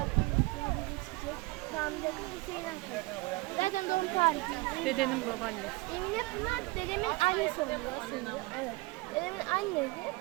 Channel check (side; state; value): left; quieter; 23.0 dB